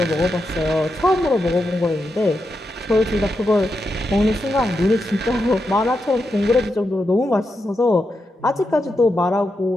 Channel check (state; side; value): normal; both; correlation 0.86